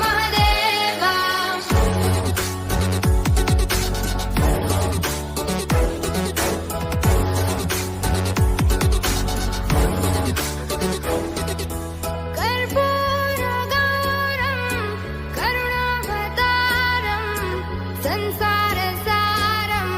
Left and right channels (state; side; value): identical; both; correlation 1.00